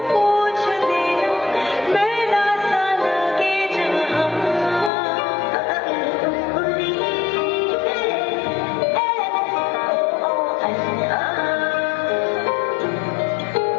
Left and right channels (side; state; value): right; drops out; at 4.9 s